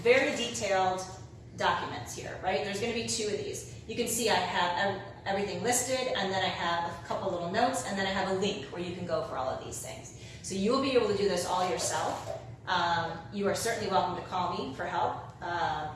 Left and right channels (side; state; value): both; identical; correlation 1.00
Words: very detailed documents here, right? There's going to be 2 of these. you can see I have everything listed, and then I have a couple little notes, and then I have a link where you can go for all of these things. So you'll be able to do this all yourself. You are certainly welcome to call me for help